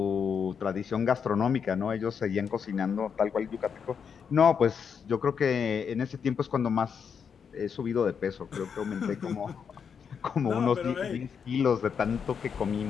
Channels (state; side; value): quieter; right; 6.8 dB